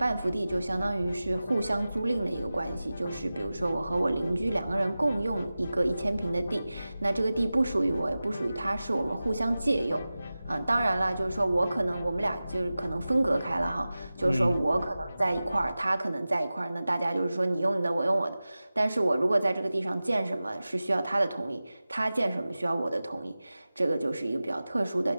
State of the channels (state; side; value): inverted; both; correlation -0.96